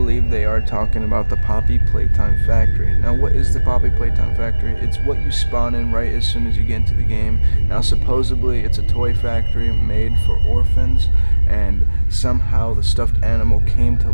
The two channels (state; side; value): inverted; both; correlation -1.00